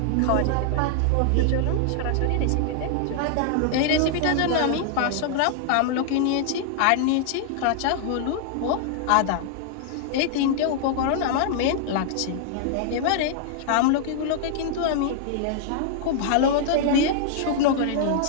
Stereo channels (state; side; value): different; both; correlation -0.01